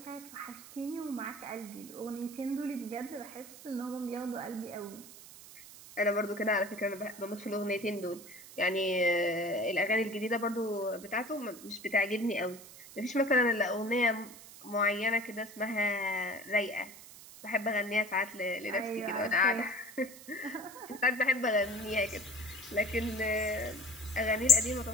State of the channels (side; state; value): right; noise; hiss, 17 dB below the sound